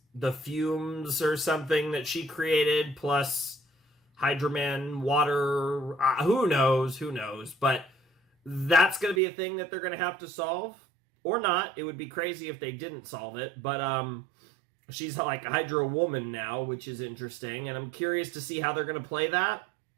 the fumes or something that she created, plus Hydro Man, water, who knows, but that's going to be a thing that they're going to have to solve. Or not. It would be crazy if they didn't solve it. But she's like a Hydro Woman now, which is interesting. And I'm curious to see how they're going to play that.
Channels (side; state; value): left; drops out; at 9.2 s